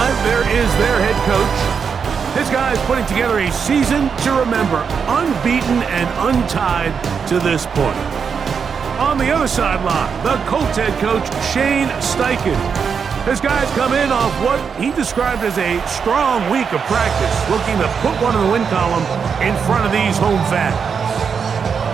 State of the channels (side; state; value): left; quieter; 6.3 dB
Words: there is their head coach. This guy is putting together a season to remember, unbeaten and untied to this point. On the other sideline, the Colts head coach, Shane Steichen. This guy's come in off what he described as a strong week of practice, looking to put one in the win column in front of these home fans.